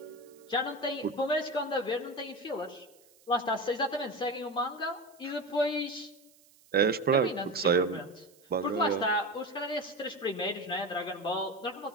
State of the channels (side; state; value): right; noise; hiss, 28 dB below the sound